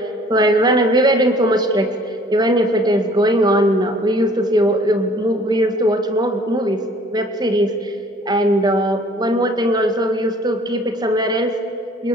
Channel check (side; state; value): both; normal; correlation 0.54